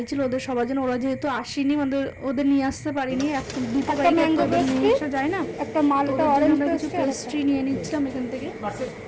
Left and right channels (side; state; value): both; identical; correlation 1.00